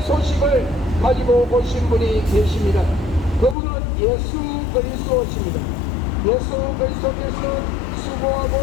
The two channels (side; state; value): right; drops out; at 3.6 s